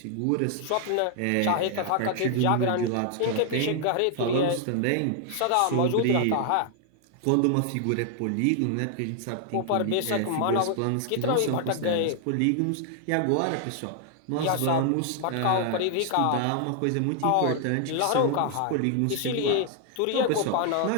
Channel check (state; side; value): different; both; correlation 0.00